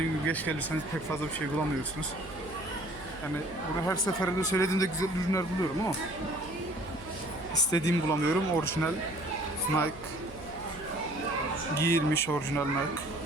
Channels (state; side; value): noise; right; hum, 17 dB below the sound